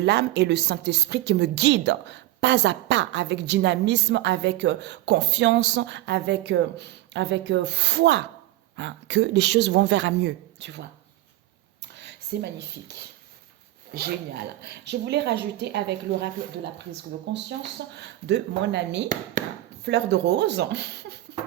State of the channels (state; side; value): quieter; left; 16.1 dB